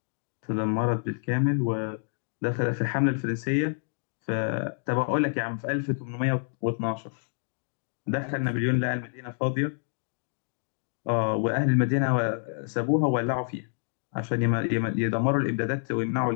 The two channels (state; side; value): silent; right; digital silence